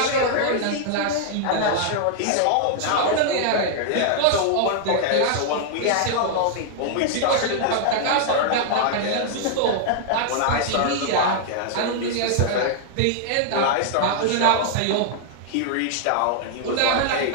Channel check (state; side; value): different; both; correlation -0.01